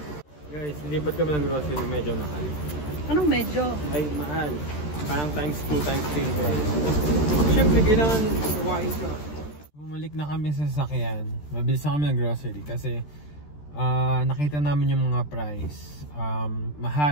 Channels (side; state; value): right; late; 13 ms